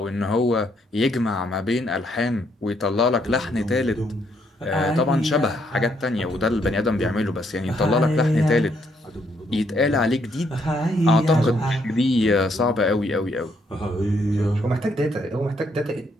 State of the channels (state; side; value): normal; both; correlation 0.72